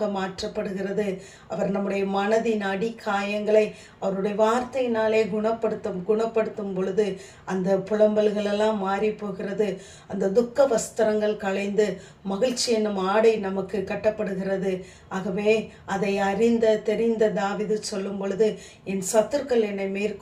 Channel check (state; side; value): identical; both; correlation 1.00